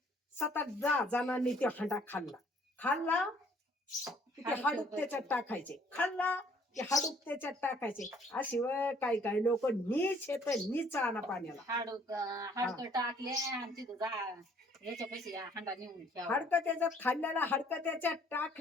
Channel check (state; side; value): normal; both; correlation 0.61